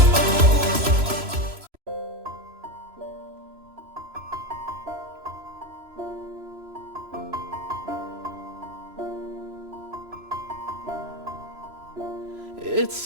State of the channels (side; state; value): left; late; 3.0 ms